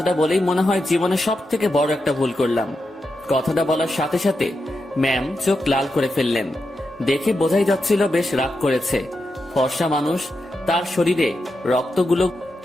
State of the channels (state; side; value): normal; both; correlation 0.87